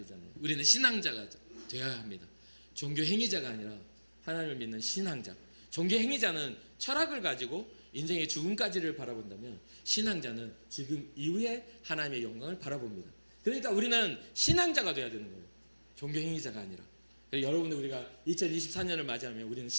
우리는 신앙자가 되어야 합니다. 종교 행위자가 아니라 하나님을 믿는 신앙자. 종교 행위자는 철학을 가지고 인생의 죽음까지를 바라본다면 신앙자는 지금 이후에 하나님의 영광을 바라봅니다. 그러니까 우리는 신앙자가 되어야 되는 거예요. 종교 행위자가 아니라. 여러분들 우리가 2024년을 맞이하면 우리는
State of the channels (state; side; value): inverted; both; correlation -1.00